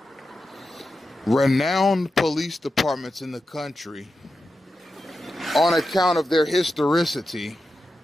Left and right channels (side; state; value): both; normal; correlation 0.90